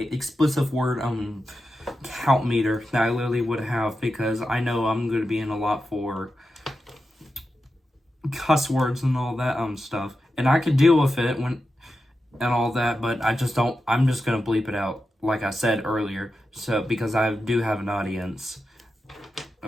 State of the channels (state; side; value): normal; both; correlation 0.90